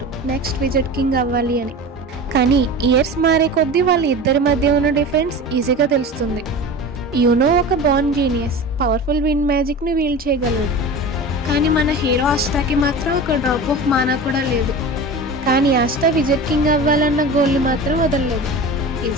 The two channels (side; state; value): both; normal; correlation 0.32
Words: నెక్స్ట్ విజెట్ కింగ్ అవ్వాలి అని. కానీ ఇయర్స్ మారే కొద్దీ వాళ్ళ ఇద్దరి మధ్య ఉన్న డిఫరెన్స్ ఈజీగా తెలుస్తుంది. యూనో ఒక బార్న్ జీనియస్, పవర్ఫుల్ విండ్ మ్యాజిక్ని వీల్ చేయగలడు. కానీ మన హీరో ఆస్టాకి మాత్రం ఒక డ్రాప్ ఆఫ్ మానా కూడా లేదు. కానీ ఆస్టా విజెట్ కింగ్ అవ్వాలన్న గోల్ని మాత్రం వదలలేదు.